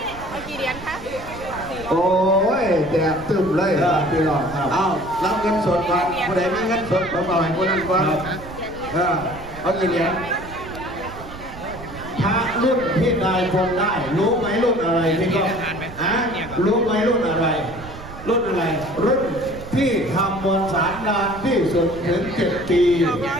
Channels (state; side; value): noise; right; rumble, 15 dB below the sound